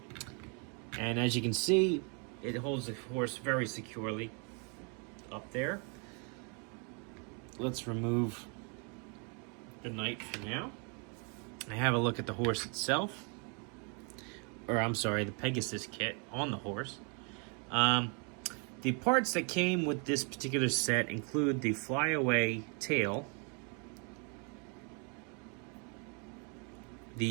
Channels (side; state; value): left; quieter; 36.4 dB